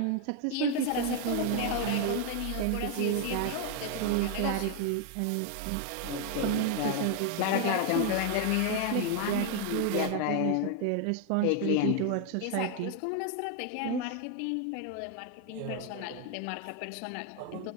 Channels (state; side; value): different; both; correlation 0.00